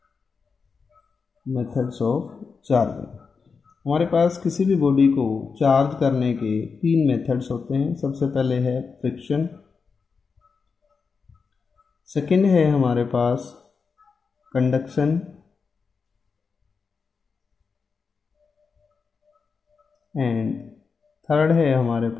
Methods of charging, हमारे पास किसी भी बॉडी को चार्ज करने के तीन मेथड्स होते हैं। सबसे पहले है फ्रिक्शन, सेकेंड है हमारे पास कंडक्शन, एंड थर्ड है हमारे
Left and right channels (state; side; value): quieter; right; 5.2 dB